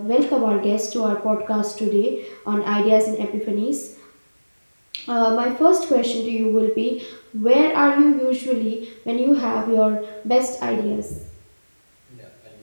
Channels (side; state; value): both; inverted; correlation -1.00